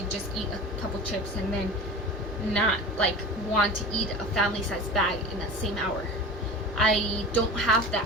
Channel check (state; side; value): normal; both; correlation 0.34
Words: just eat a couple chips and then not like want to eat a family-sized bag in that same hour. I don't have